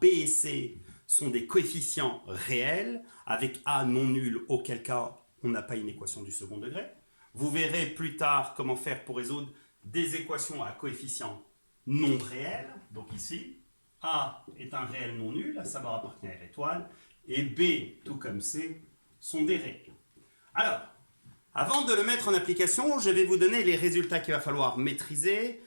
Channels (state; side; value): inverted; both; correlation -1.00